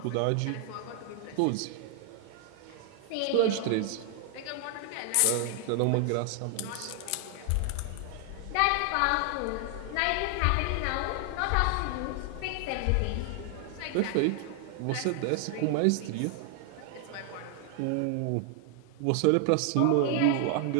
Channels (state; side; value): different; both; correlation 0.00